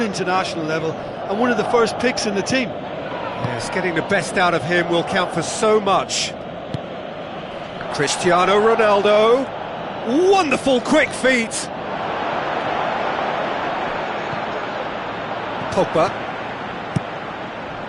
international level, and one of the first picks in the team. Yes, getting the best out of him will count for so much. Cristiano Ronaldo. Wonderful quick feet. Pogba.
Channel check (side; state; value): both; identical; correlation 1.00